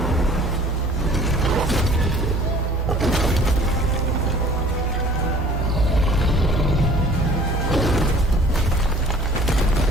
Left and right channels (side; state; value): both; normal; correlation 0.52